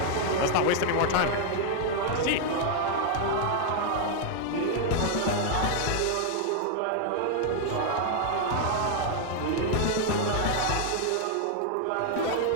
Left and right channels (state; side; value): different; both; correlation 0.00